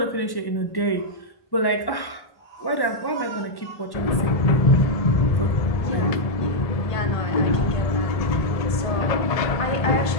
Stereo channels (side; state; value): right; late; 1.1 ms